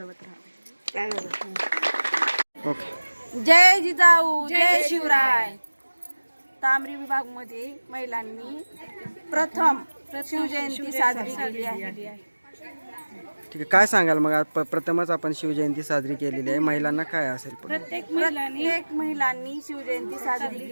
राहावे. ओके. जय जिजाऊ, जय शिवराय. तांबरी विभागमध्ये महिलांनी प्रथम शिवजयंती साजरी केली आहे. ठीक आहे, काय सांगाल मग? आज प्रथमच आपण शिवजयंती साजरी केलेली आहे, महिलांना काय असेल? प्रत्येक महिलांनी शिवजयंती साजरी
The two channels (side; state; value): both; inverted; correlation -1.00